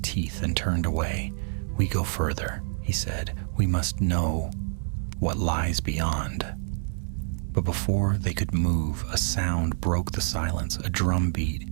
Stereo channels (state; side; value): silent; left; 60 dB below the other